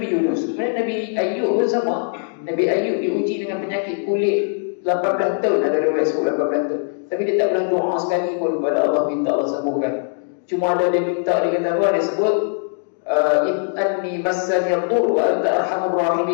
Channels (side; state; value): right; silent; digital silence